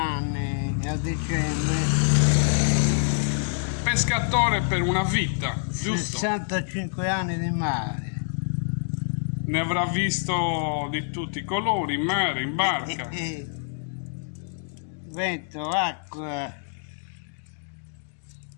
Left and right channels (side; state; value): right; silent; digital silence